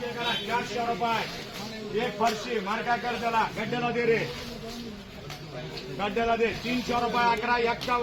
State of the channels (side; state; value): both; identical; correlation 1.00